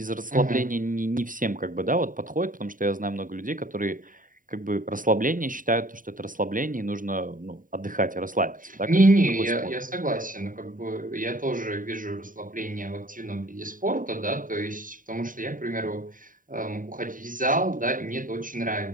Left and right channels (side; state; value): left; late; 0.39 ms